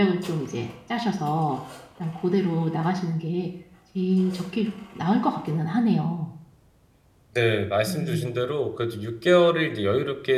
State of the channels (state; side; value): identical; both; correlation 1.00